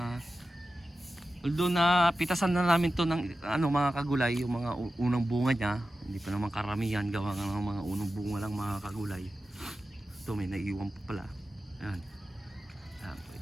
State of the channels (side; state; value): both; normal; correlation 0.93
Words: Although na pitasan na namin to ng mga kagulay, yung mga unang bunga niya, hindi pa naman karamihan, gawa nga ng mga unang bunga lang mga kagulay. Ito may naiiwan pa pala. Ayan. Ayan,